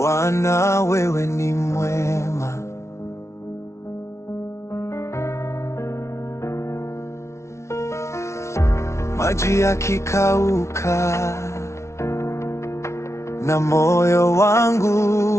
wewe ni mwema. Maji yakikauka na moyo wangu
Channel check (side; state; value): right; late; 0.13 ms